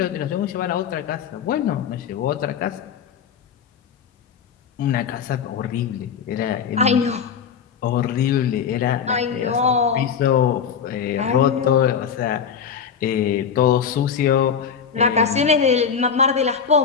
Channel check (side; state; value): right; quieter; 7.0 dB